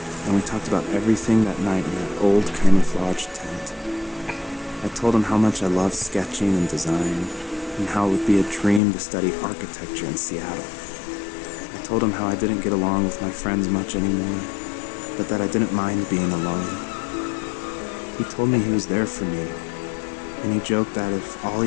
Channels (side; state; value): right; drops out; at 8.8 s